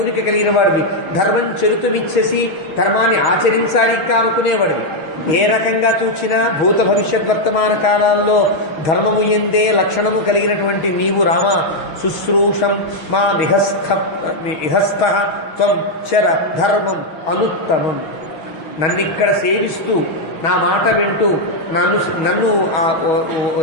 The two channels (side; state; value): right; late; 6.0 ms